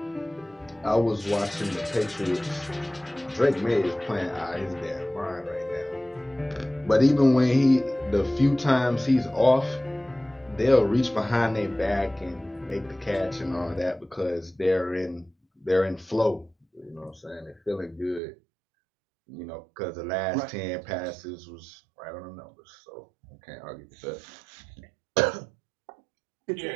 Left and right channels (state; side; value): drops out; left; at 18.2 s